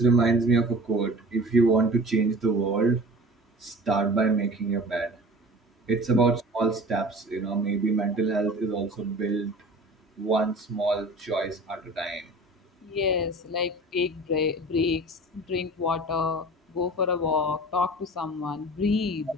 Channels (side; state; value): both; normal; correlation 0.41